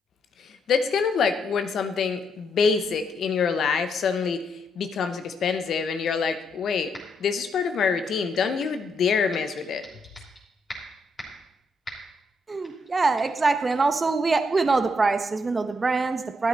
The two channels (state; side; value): normal; both; correlation 0.76